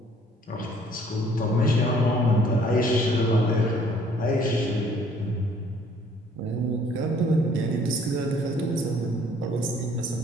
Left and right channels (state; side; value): normal; both; correlation 0.59